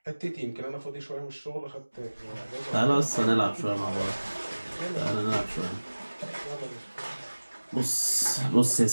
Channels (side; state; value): both; inverted; correlation -1.00